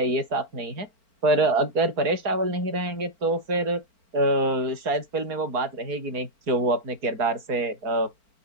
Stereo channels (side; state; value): left; late; 4.4 ms